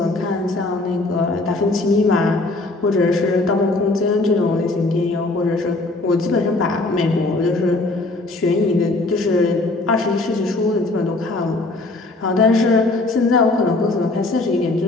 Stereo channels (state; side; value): quieter; right; 3.0 dB